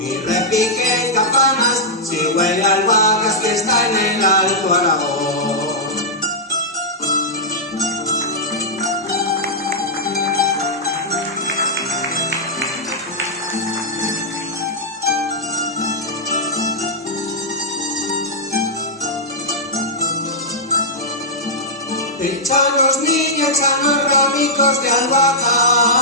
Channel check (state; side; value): normal; both; correlation -0.09